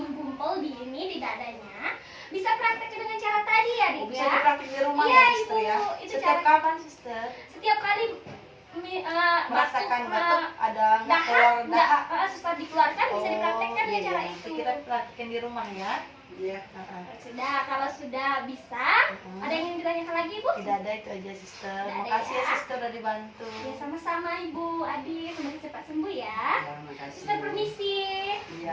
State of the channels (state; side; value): identical; both; correlation 1.00